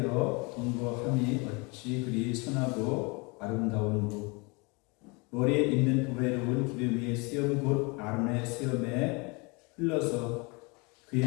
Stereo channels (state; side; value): quieter; right; 29.2 dB